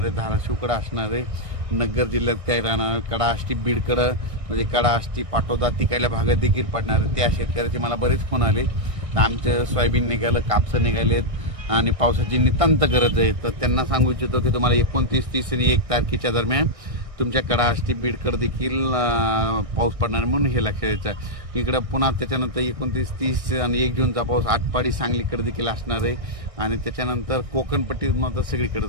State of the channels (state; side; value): late; left; 1.6 ms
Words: धाराशिवकडे असणार आहे, नगर जिल्ह्यात काय राहणार, कडा आष्टी बीडकडे म्हणजे कडा आष्टी पाटोदा तिकडल्या भागात देखील पडणार आहे। त्या शेतकऱ्याचे मला बरेच फोन आले, आमचं सोयाबीन निघालं, कापसं निघालेत आणि पावसाची नितांत गरज आहे। तर त्यांना सांगू इच्छितो की तुम्हाला 29, 30 आणि 1 तारखेच्या दरम्यान तुमच्या कडा आष्टी बीडकडे देखील पाऊस पडणार, म्हणून हे लक्षात घ्यायचं। इकडं पुन्हा त्याच्यानंतर 29, 30 आणि 1 जूनचा पाऊस आटपाडी सांगलीकडे देखील असणार आहे आणि त्याच्यानंतर कोकणपट्टीत मात्र